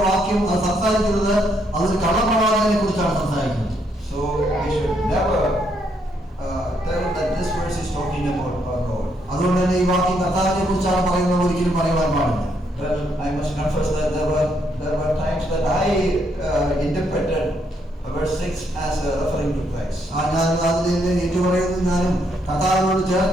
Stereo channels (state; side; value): normal; both; correlation 0.74